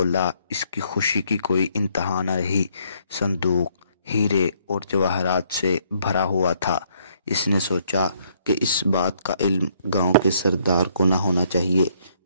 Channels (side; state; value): both; inverted; correlation -0.68